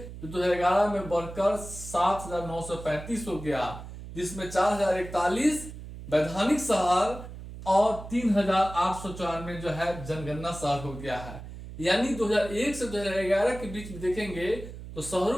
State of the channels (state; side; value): noise; right; hum, 12 dB below the sound